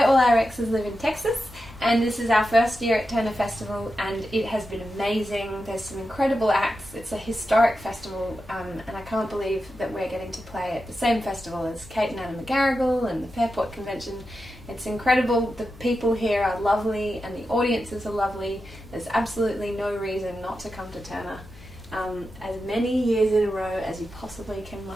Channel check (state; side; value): noise; left; hum, 20 dB below the sound